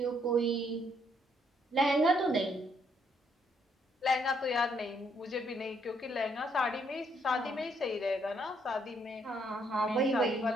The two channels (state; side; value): normal; both; correlation 0.71